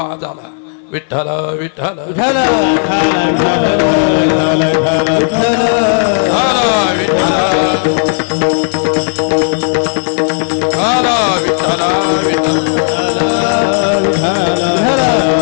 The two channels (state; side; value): silent; right; digital silence